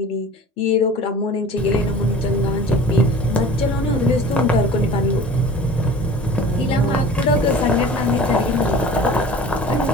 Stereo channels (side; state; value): both; normal; correlation 0.41